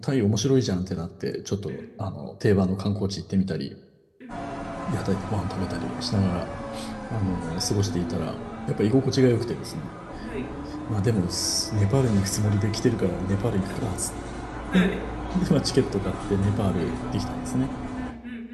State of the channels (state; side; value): identical; both; correlation 1.00